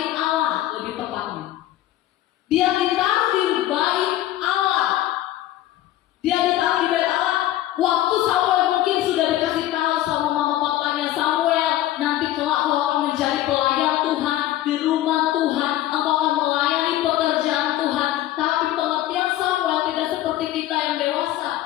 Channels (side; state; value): right; quieter; 14.0 dB